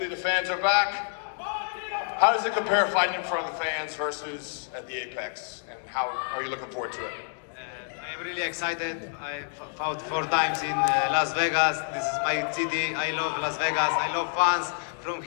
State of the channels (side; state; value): right; silent; 59 dB below the other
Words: the fans are back. How does it compare fighting in front of the fans versus at the Apex? And how are you looking forward to it? I'm really excited. I fought 4 times in Las Vegas. This is my city. I love Las Vegas. I love fans. From